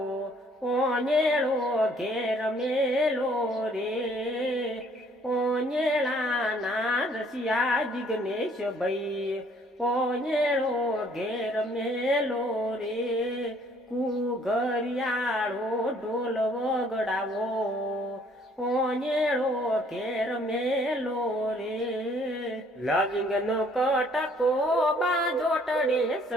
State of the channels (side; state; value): both; normal; correlation 0.61